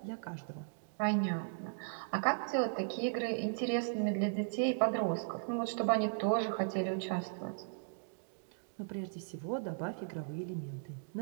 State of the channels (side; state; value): left; silent; digital silence